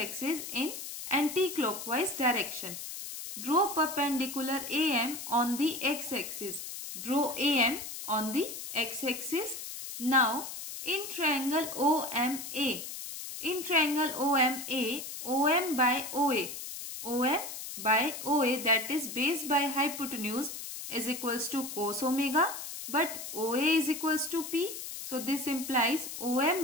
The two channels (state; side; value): noise; left; hiss, 8 dB below the sound